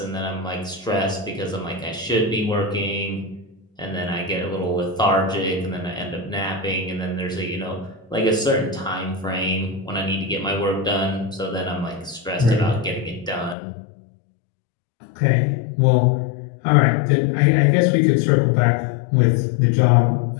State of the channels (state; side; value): drops out; right; at 13.6 s